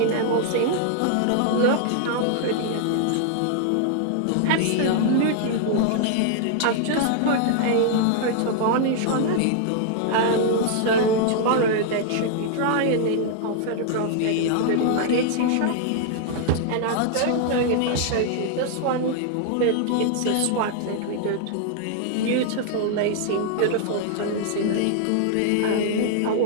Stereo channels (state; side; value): different; both; correlation -0.01